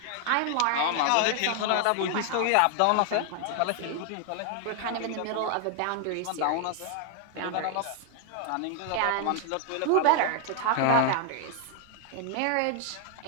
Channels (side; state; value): both; different; correlation 0.00